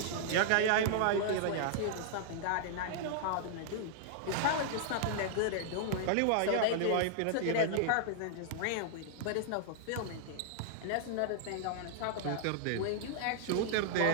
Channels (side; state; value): both; different; correlation -0.01